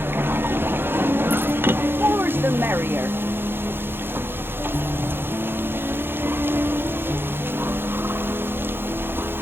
More's the merrier.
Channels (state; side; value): late; left; 0.10 ms